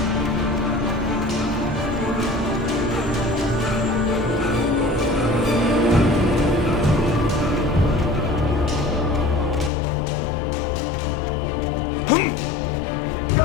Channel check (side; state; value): right; drops out; at 9.7 s